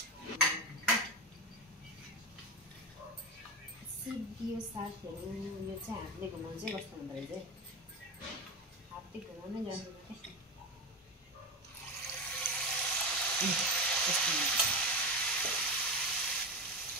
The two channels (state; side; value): normal; both; correlation 0.18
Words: सिद्धियो साथीहरू। यो चाहिँ हातले घुमाउनु चाहिँ कस्तो हुँदो रहेछ, हातले घुमाउनै जान्दैन